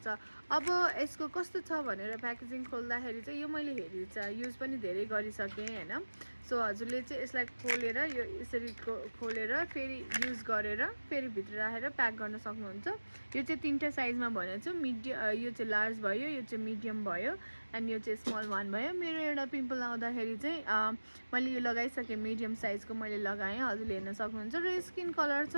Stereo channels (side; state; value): both; inverted; correlation -1.00